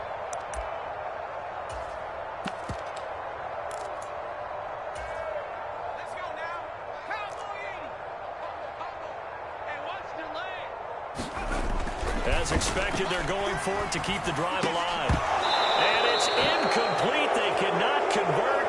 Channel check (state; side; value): identical; both; correlation 1.00